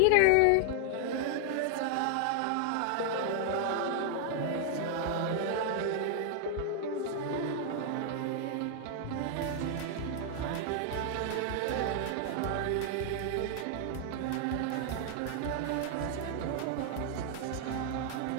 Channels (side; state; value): both; different; correlation 0.00